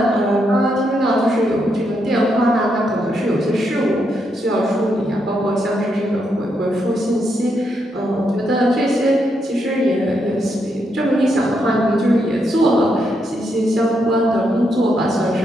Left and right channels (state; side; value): normal; both; correlation 0.80